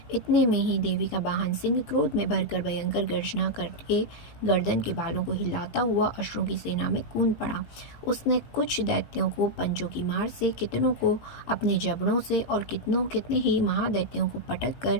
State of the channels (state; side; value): late; right; 18 ms